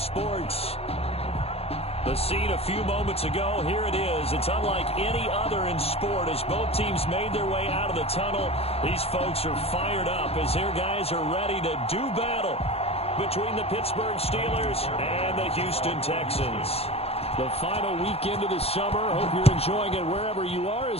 The scene a few moments ago, here it is. It's unlike any other in sport as both teams made their way out of the tunnel. These folks are fired up as their guys are ready to do battle between the Pittsburgh Steelers and the Houston Texans. The final weekend of the summer. Hope you're enjoying it wherever you are.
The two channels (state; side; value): late; right; 0.29 ms